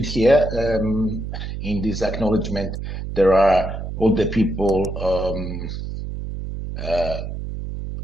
here. In this acknowledgement, there are all the people,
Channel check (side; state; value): right; noise; hum, 6 dB below the sound